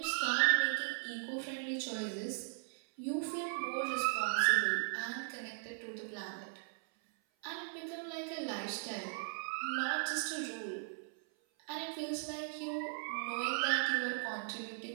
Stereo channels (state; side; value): silent; left; 52 dB below the other